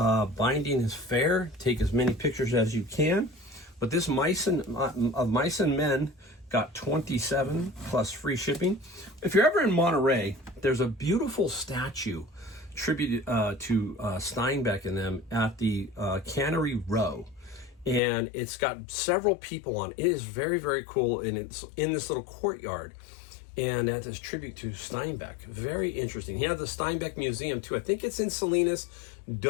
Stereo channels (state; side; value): drops out; right; at 18.0 s